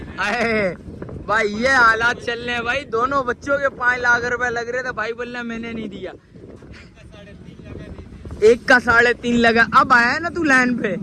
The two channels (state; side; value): identical; both; correlation 1.00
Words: अरे भाई ये हालात चल रहे हैं भाई, दोनों बच्चों के 5 लाख रुपए लग रहे थे। भाई बोल रहे मैंने नहीं दिया, एक का 3.5 लगा। अब आया ना तू लाइन पे,